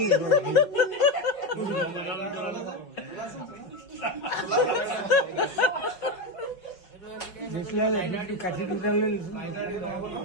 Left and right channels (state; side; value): late; right; 5.4 ms